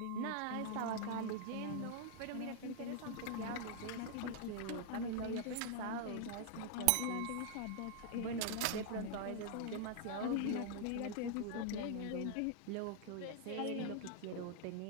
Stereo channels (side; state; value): both; different; correlation 0.00